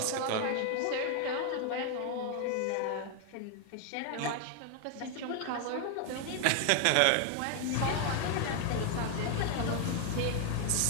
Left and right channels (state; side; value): different; both; correlation 0.00